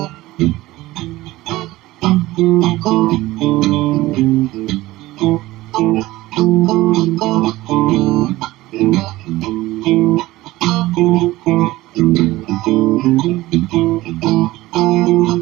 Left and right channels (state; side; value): quieter; left; 17.9 dB